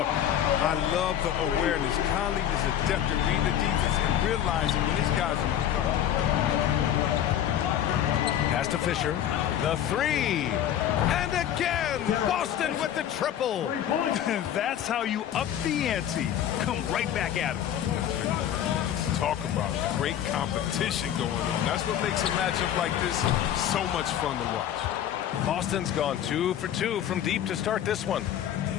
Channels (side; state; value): right; quieter; 10.5 dB